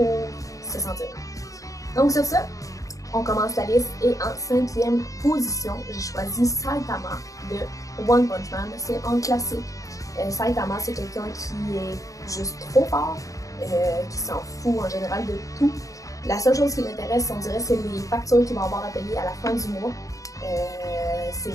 se sentir mieux. Donc sur ça, on commence la liste et en 5e position, j'ai choisi Saitama de One Punch Man. C'est un classique. Saitama, c'est quelqu'un qui est juste trop fort, qui s'en fout en général de tout. La seule chose qui l'intéresse, on dirait, c'est les factures qu'il va avoir à payer à la fin du mois. Ses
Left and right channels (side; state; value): right; late; 0.16 ms